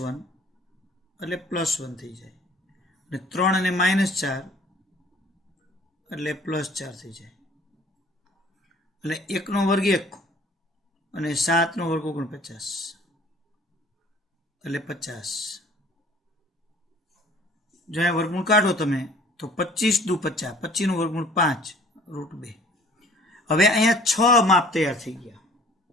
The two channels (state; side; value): normal; both; correlation 0.53